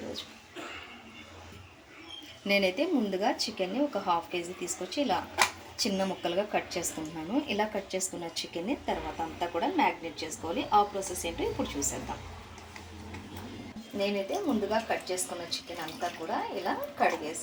నేనైతే ముందుగా చికెన్ని ఒక హాఫ్ కేజీ తీసుకొచ్చి ఇలా చిన్న ముక్కలుగా కట్ చేసుకుంటున్నాను. ఇలా కట్ చేసుకున్న చికెన్ని తర్వాత అంతా కూడా మ్యాగ్నేట్ చేసుకోవాలి. ఆ ప్రాసెస్ ఏంటో ఇప్పుడు చూసేద్దాం. నేనైతే ముందుగా కట్ చేసుకున్న చికెన్ అంతా కూడా ఇలా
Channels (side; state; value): both; identical; correlation 1.00